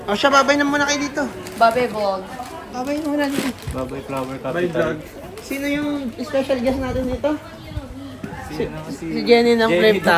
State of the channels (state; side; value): identical; both; correlation 1.00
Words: O siya, babay na muna kayo dito. Babe vlog. Babay na muna dito. Babay flower capital. Sino yung special guest natin dito? Si Si Jenny ng Jenny Flip